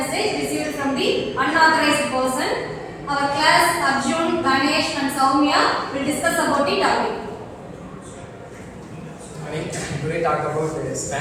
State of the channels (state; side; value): identical; both; correlation 1.00